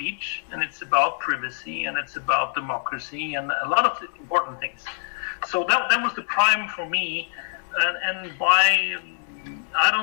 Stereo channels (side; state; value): right; silent; 62 dB below the other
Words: and it's about privacy, and it's about democracy, and a lot of important things. So that was the prime for me, and by, I